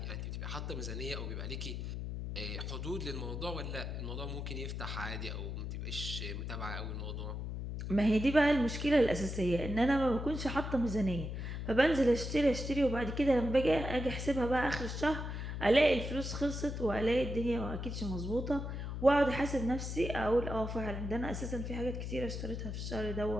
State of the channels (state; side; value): noise; left; hum, 5 dB below the sound